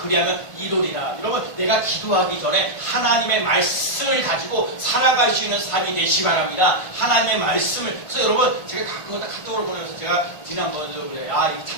이루리라. 여러분 내가 기도하기 전에 하나님의 말씀을 가지고 살아갈 수 있는 삶이 되시기 바랍니다. 하나님의 말씀을. 그래서 여러분 제가 가끔마다 카톡으로 보내면서 제가 지난번에도 그래요. 이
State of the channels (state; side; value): late; right; 1.5 ms